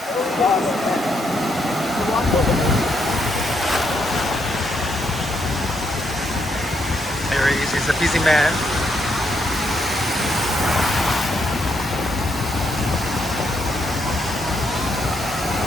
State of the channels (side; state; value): both; normal; correlation 0.77